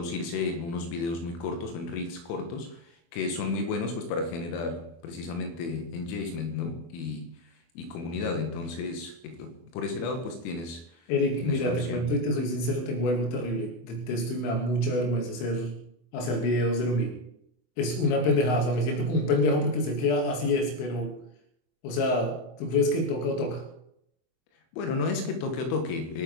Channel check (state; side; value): late; right; 24 ms